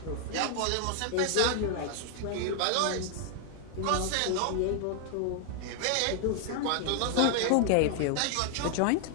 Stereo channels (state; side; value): different; both; correlation 0.00